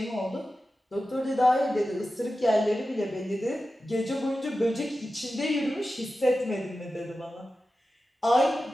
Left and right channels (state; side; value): normal; both; correlation 0.93